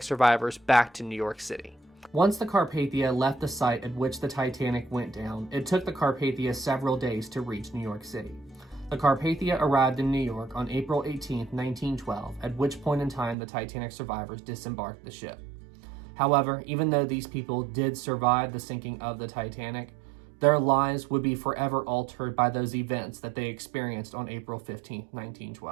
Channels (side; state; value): left; drops out; at 13.4 s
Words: survivors back to New York City. Once the Carpathia left the site at which the Titanic went down, it took the Carpathia several days to reach New York City. The Carpathia arrived in New York on April 18, 1912, at which point in time the Titanic survivors disembarked the ship. However, even though these people did survive the sinking of the Titanic, their lives would be forever altered by those events that they experienced on April 15,